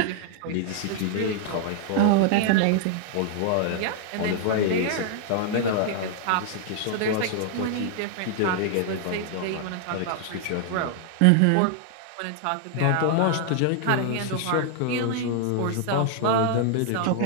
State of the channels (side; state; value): both; different; correlation 0.00